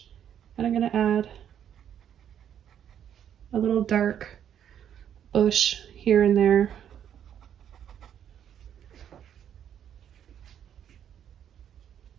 And I'm going to add a little dark bush here and there.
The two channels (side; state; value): left; quieter; 9.4 dB